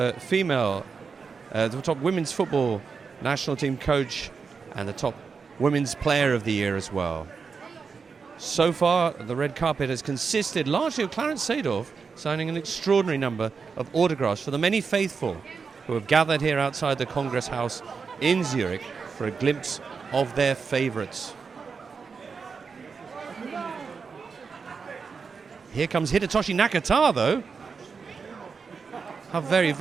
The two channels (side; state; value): left; quieter; 5.3 dB